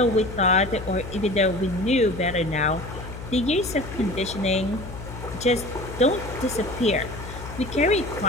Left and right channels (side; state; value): left; noise; hum, 11 dB below the sound